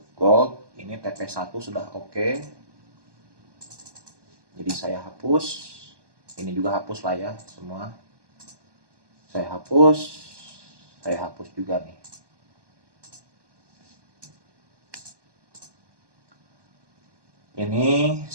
gold. Ini TP1 sudah oke. Jadi saya hapus. Ini juga hapus lah ya semua. saya hapus juga nih. Ini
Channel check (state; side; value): late; left; 1.2 ms